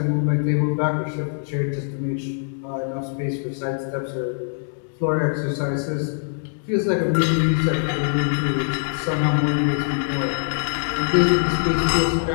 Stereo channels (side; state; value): right; silent; digital silence